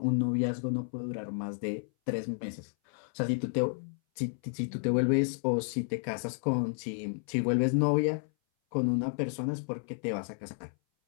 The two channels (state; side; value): silent; right; 57 dB below the other